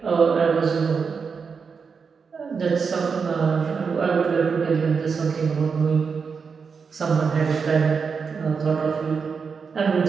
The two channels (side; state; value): left; quieter; 5.6 dB